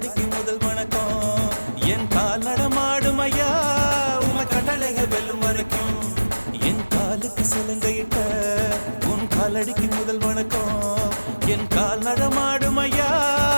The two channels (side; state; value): both; inverted; correlation -1.00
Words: காலடிக்கு முதல் வணக்கம் என் கால் நடமாடும் ஐயா உம கட்டளைகள் வெல்லும் வரைக்கும் என் காலுக்கு சிலங்கையிட்ட உன் காலடிக்கு முதல் வணக்கம் என் கால் நடமாடும் ஐயா